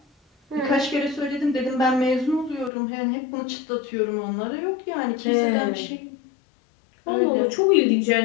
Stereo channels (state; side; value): drops out; right; at 2.7 s